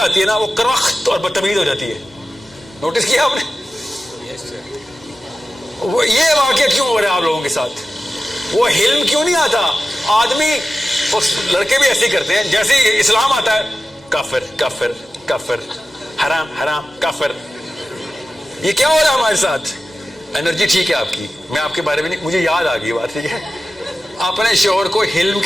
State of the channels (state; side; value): normal; both; correlation 0.94